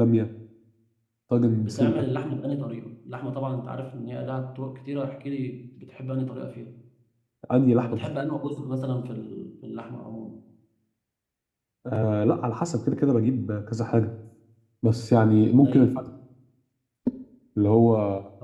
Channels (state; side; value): identical; both; correlation 1.00